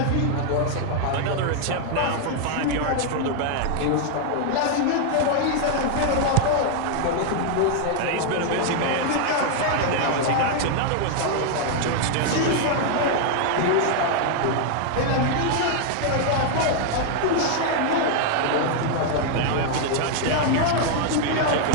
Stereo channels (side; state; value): both; different; correlation 0.00